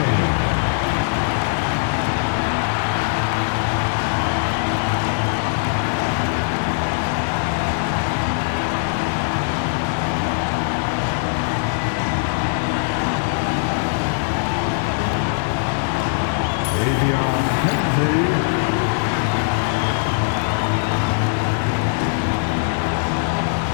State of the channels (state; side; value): silent; right; digital silence